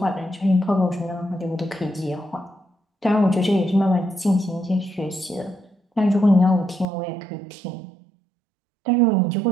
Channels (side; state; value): left; drops out; at 6.9 s